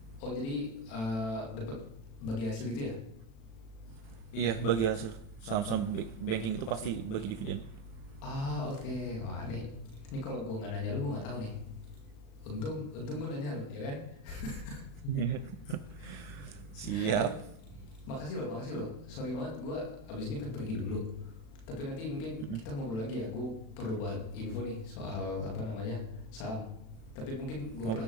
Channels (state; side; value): late; right; 36 ms